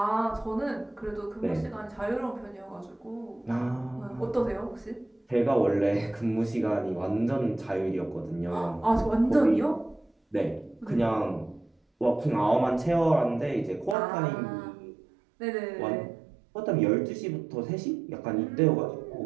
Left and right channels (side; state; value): left; drops out; at 14.0 s